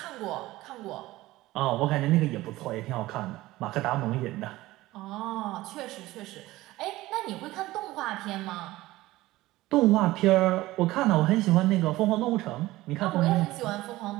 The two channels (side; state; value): left; quieter; 17.7 dB